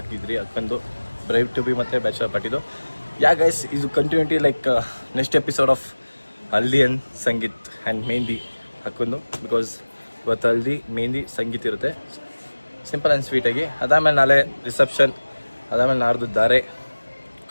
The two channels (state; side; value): inverted; both; correlation -1.00